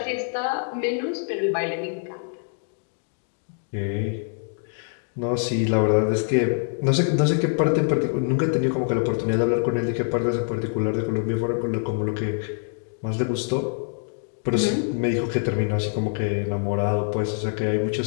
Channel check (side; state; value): right; silent; digital silence